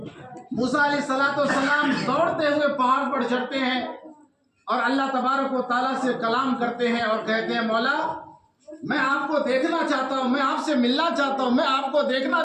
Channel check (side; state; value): both; identical; correlation 1.00